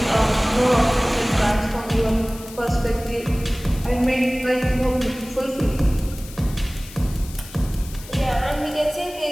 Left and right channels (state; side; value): noise; left; hiss, 17 dB below the sound